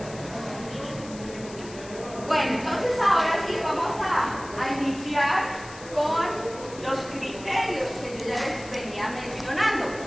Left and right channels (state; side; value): noise; left; hiss, 17 dB below the sound